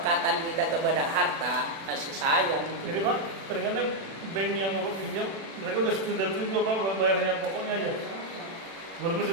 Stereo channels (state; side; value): late; left; 36 ms